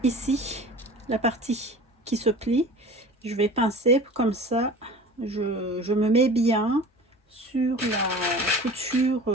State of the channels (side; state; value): both; normal; correlation 0.40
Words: ici la partie qui se plie, je vais pincer comme ça, je me mets bien sur la